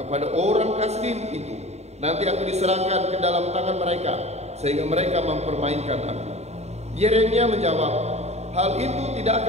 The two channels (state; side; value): late; left; 0.32 ms